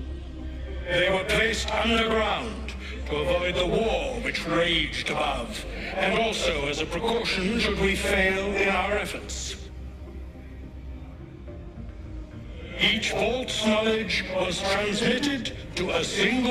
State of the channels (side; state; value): both; identical; correlation 1.00